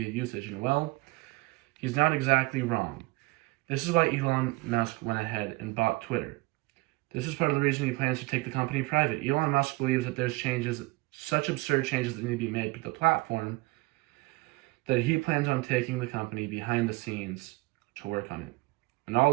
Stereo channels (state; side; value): quieter; left; 24.1 dB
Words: usage, and well, he's not exactly wrong. This is why Elon Musk went ahead and bought Twitter. This is part of the reason he plans to take the company private. Elon Musk believes that there's such absurd changes that need to be made to the platform, that he plans on taking the company behind the scenes to work on it. And